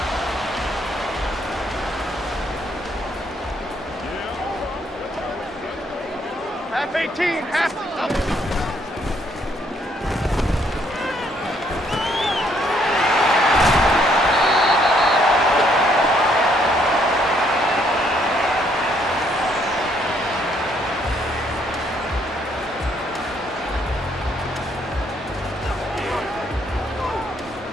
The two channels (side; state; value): both; normal; correlation 0.69